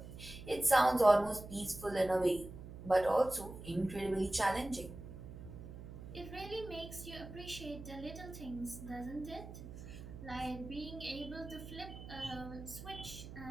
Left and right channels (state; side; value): noise; right; hum, 12 dB below the sound